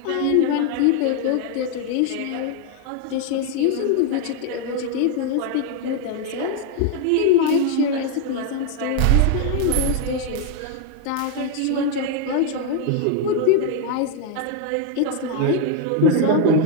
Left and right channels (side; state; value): both; different; correlation 0.01